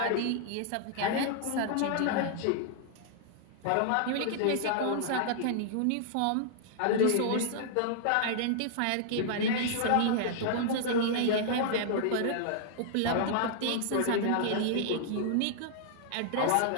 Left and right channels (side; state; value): both; different; correlation -0.01